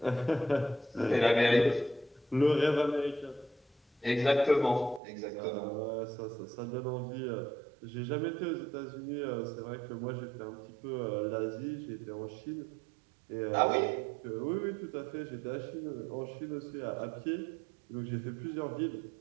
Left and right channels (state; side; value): drops out; left; at 5.0 s